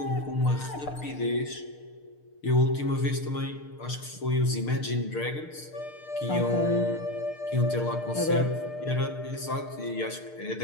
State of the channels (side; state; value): right; late; 6.6 ms